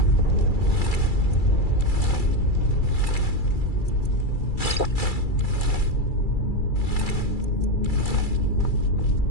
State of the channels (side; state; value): right; late; 2.3 ms